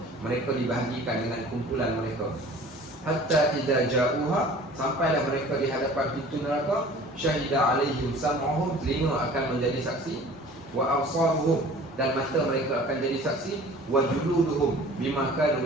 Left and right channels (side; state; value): both; normal; correlation 0.46